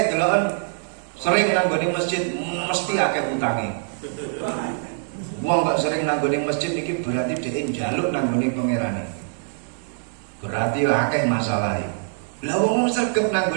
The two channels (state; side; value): silent; left; digital silence